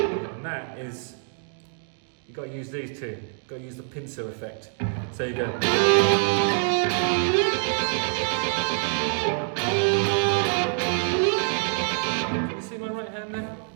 And that is, you've got to use these two. You've got to use the pincer effect. So you go. Can you see my right hand there?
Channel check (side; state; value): left; silent; 57 dB below the other